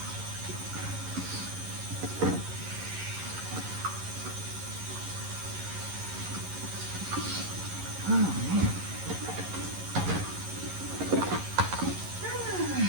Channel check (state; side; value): late; left; 11 ms